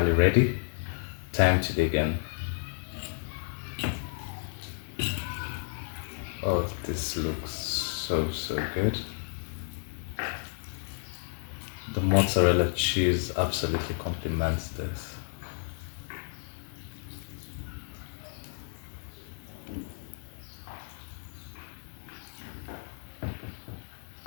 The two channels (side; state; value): right; silent; digital silence